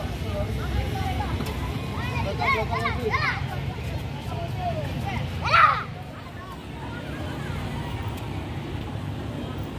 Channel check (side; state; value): both; identical; correlation 1.00